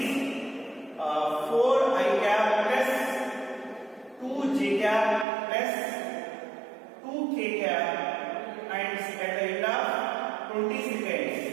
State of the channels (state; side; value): drops out; left; at 5.2 s